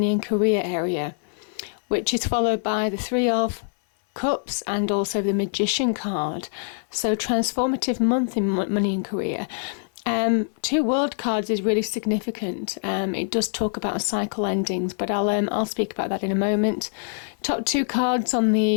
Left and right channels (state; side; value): silent; right; 58 dB below the other